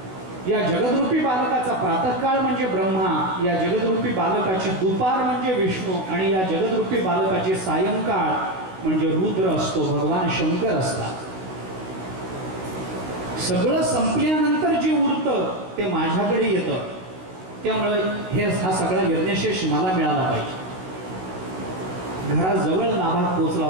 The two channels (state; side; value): late; left; 16 ms